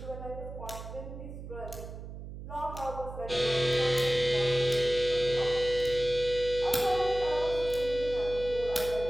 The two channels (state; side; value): noise; right; hum, 11 dB below the sound